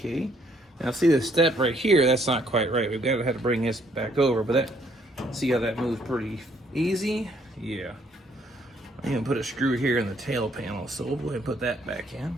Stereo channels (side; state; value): both; normal; correlation 0.67